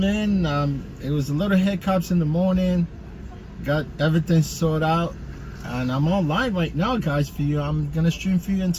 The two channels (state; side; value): identical; both; correlation 1.00